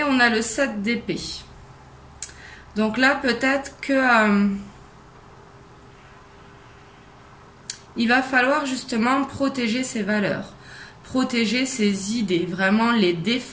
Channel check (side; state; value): both; identical; correlation 1.00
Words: on a le 7 d'épée. Donc là, peut-être que il va falloir justement protéger ses valeurs, protéger ses idées, vraiment les